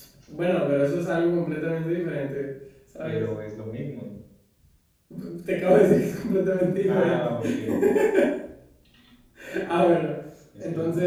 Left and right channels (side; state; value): both; identical; correlation 1.00